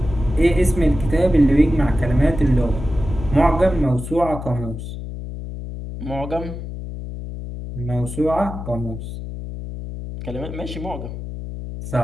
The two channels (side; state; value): left; noise; hum, 8 dB below the sound